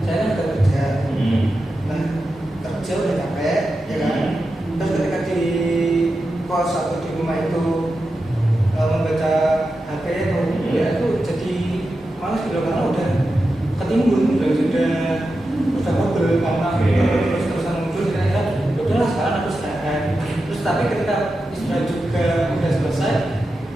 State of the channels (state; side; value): normal; both; correlation 0.90